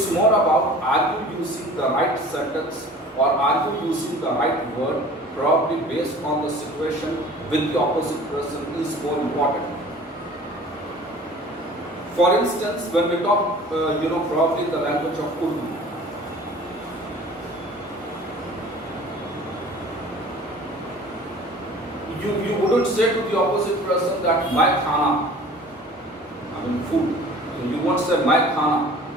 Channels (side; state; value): both; normal; correlation 0.45